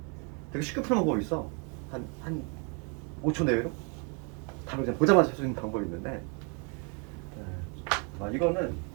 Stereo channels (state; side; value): quieter; left; 35.2 dB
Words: 되게 쉽게 푸는 방법이 있어. 한 5초 내외로 답을 그냥 보자마자 할 수 있는 방법이 있는데 이거는